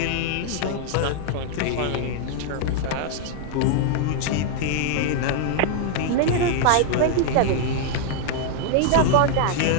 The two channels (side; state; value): both; different; correlation 0.00